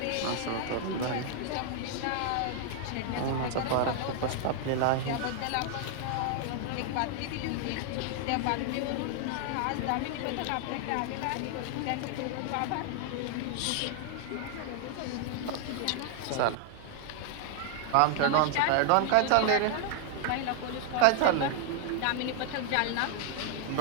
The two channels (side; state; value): both; different; correlation 0.00